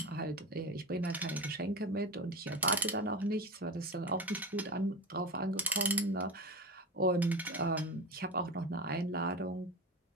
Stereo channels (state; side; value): normal; both; correlation 0.25